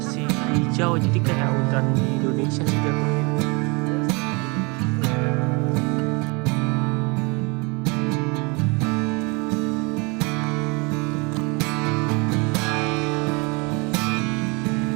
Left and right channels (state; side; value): quieter; left; 29.0 dB